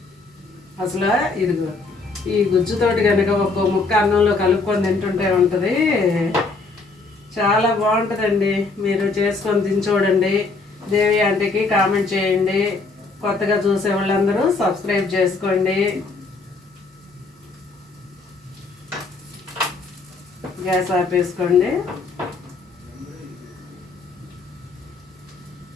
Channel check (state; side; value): quieter; right; 3.8 dB